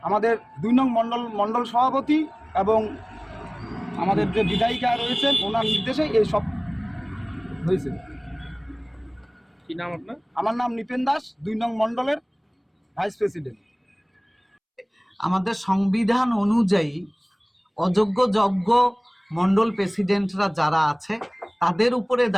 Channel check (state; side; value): identical; both; correlation 1.00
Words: আমাদের 2 নং মণ্ডল সভাপতি এবং আমাদের যে বিধায়িকা রয়েছেন ওনার নির্দেশে এই সব হয়েছে। কি নাম আপনার? আমার নাম নিপেন দাস, 2 নং মণ্ডলের ভাইস প্রেসিডেন্ট। আমাদের সংবিধান অনুযায়ী অযোগ্য যোগ্য মণ্ডল প্রেসিডেন্টরা যারা আছে তাদের উপরে